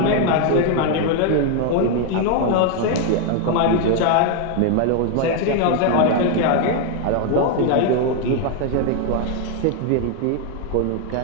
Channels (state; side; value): different; both; correlation 0.01